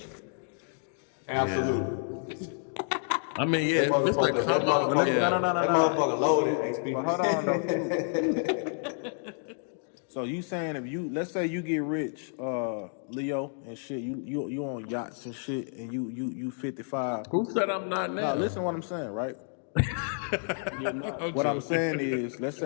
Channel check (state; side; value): silent; right; 58 dB below the other